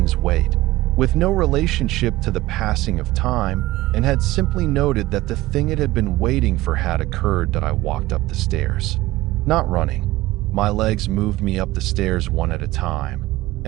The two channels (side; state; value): left; quieter; 17.7 dB